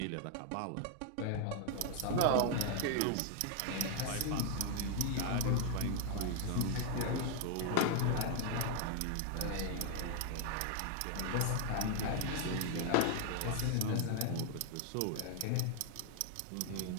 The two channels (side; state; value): both; different; correlation 0.00